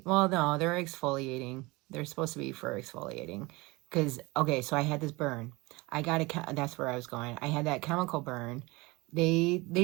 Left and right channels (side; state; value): left; quieter; 23.6 dB